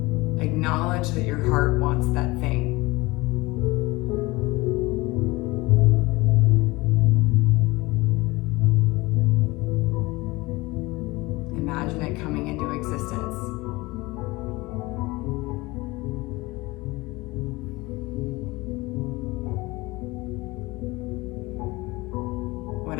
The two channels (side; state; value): right; quieter; 22.1 dB